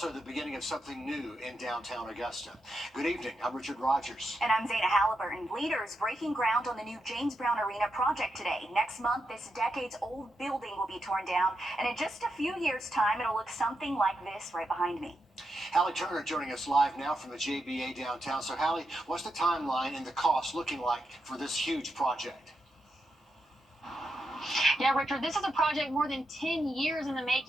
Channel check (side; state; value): both; normal; correlation 0.85